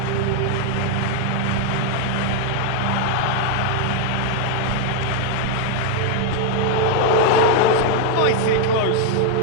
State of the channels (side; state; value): both; different; correlation 0.00